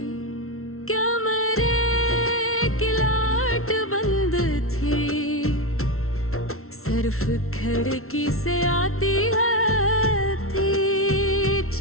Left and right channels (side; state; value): right; late; 0.62 ms